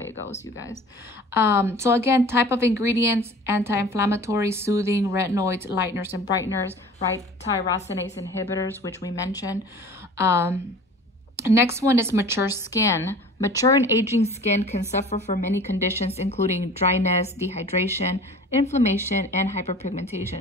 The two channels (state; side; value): normal; both; correlation 0.43